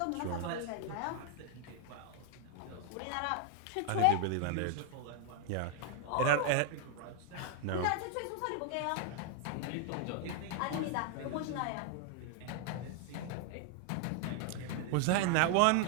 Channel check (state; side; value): different; both; correlation 0.00